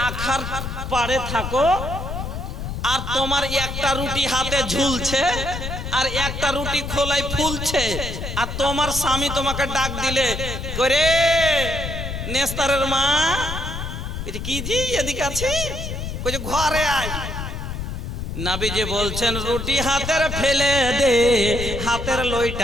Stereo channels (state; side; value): noise; left; rumble, 6 dB below the sound